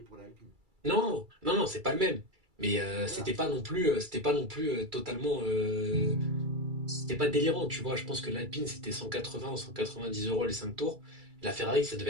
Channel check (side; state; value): left; late; 2.3 ms